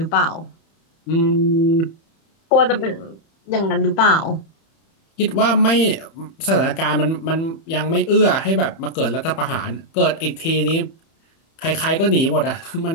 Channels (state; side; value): late; right; 31 ms